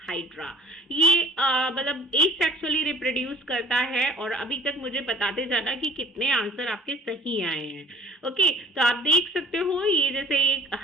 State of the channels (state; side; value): normal; both; correlation 0.50